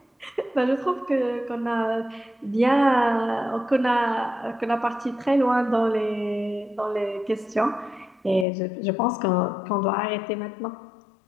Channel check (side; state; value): right; drops out; at 8.5 s